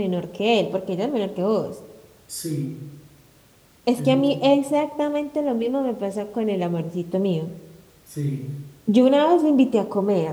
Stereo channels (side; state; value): both; identical; correlation 1.00